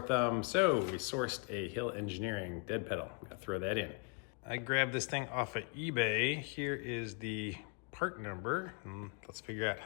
So we sourced a Hill Engineering dead pedal. I'm gonna throw that in. I grabbed this thing off of eBay. Here is the part number. Let's figure out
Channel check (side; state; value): right; quieter; 35.6 dB